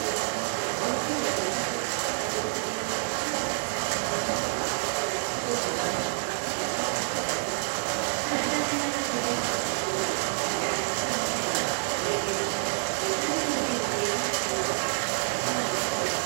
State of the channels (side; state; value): left; silent; digital silence